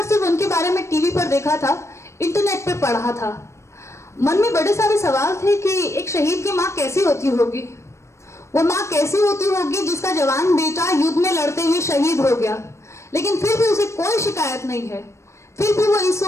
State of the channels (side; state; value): right; late; 0.13 ms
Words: सिर्फ उनके बारे में टीवी पर देखा था, इंटरनेट पे पढ़ा था। मन में बड़े सारे सवाल थे कि एक शहीद की माँ कैसी होती होगी, वो माँ कैसी होती होगी जिसका जवान बेटा युद्ध में लड़ते हुए शहीद हो गया, लेकिन फिर भी उसे कोई शिकायत नहीं है। फिर भी वो इस